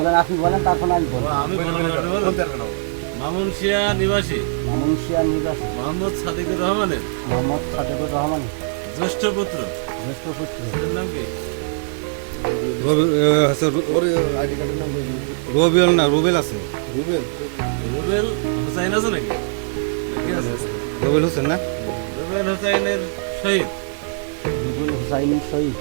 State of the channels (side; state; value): left; silent; digital silence